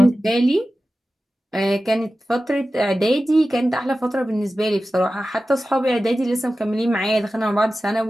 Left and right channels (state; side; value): normal; both; correlation 0.94